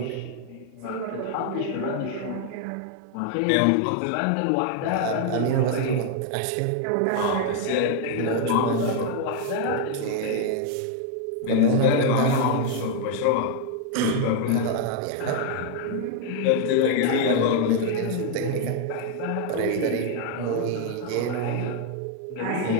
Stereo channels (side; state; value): both; different; correlation 0.00